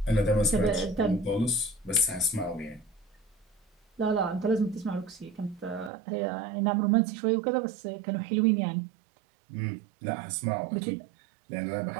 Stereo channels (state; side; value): drops out; left; at 5.9 s